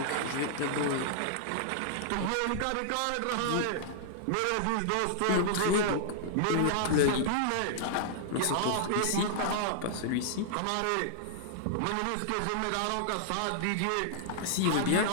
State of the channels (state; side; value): different; both; correlation -0.01